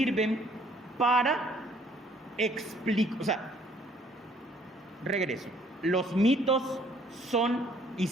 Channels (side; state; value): both; normal; correlation 0.61